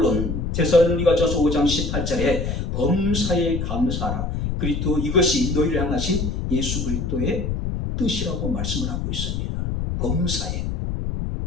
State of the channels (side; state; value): left; noise; rumble, 2 dB below the sound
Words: 데살로니가전서 5장 18절에 범사에 감사하라. 그리스도 이것이 너희를 향하신 예수 그리스도의 뜻이라고 말씀을 하고 있습니다. 범사에.